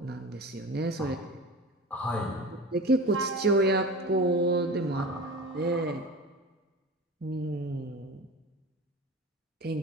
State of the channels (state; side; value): normal; both; correlation 0.32